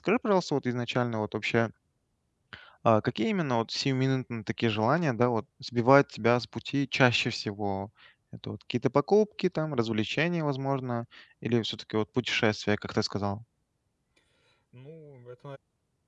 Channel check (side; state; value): both; identical; correlation 1.00